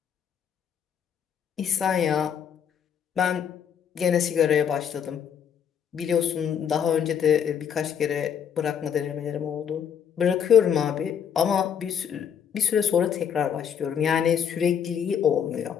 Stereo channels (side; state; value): right; quieter; 8.1 dB